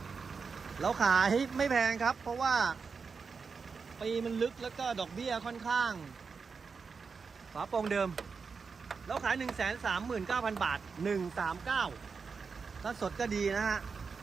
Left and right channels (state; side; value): quieter; left; 5.2 dB